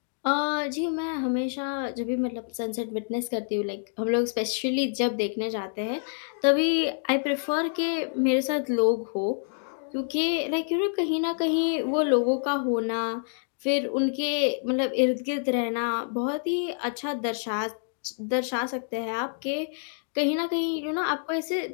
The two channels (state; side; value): silent; right; digital silence